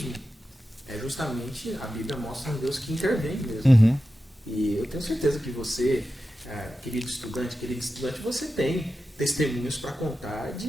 é justamente, a Bíblia mostra um Deus que intervém mesmo. E eu tenho certeza que você, querido estudante, você tem testemunhos para contar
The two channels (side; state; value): both; normal; correlation 0.92